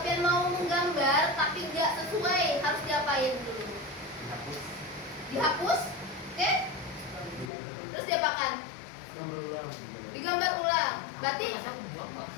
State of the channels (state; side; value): drops out; right; at 7.5 s